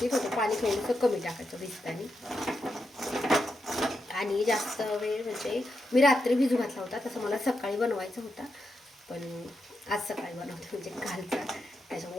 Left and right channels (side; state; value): both; normal; correlation 0.85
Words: होतं. पाणी थोडंसं कमी टाकायचं भिजताना. आणि जास्त वेळ म्हणजे मी रात्री भिजू घातला होता. तसं मला सकाळी बनवायचा होता, पण आज सकाळी बनवते म्हणजे कालचा.